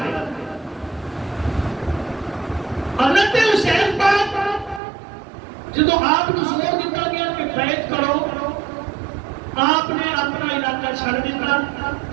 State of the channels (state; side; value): drops out; left; at 4.8 s